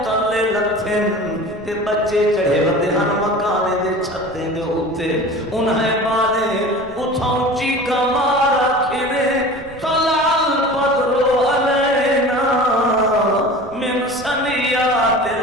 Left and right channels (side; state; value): right; noise; rumble, 20 dB below the sound